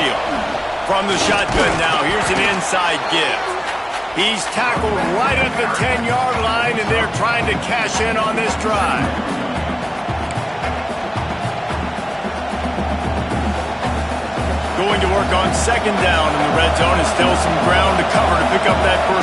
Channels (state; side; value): identical; both; correlation 1.00